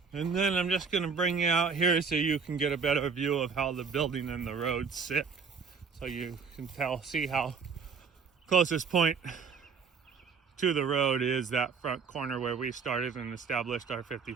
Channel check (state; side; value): quieter; left; 5.6 dB